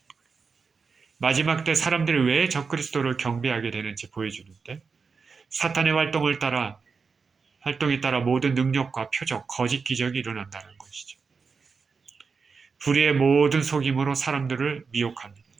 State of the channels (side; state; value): left; quieter; 5.1 dB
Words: 마지막 때 사람들이 왜 적그리스도를 경배하게 되는지 보여주는데 사탄의 활동에 따라 모든 능력과 표적, 거짓 기적이 일어난다는 것이죠. 불의의 모든 속임으로 사람들을 미혹합니다.